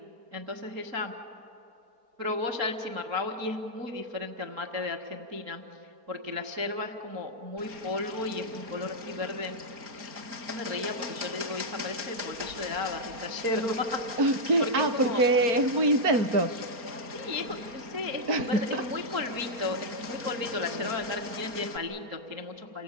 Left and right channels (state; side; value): late; left; 4.3 ms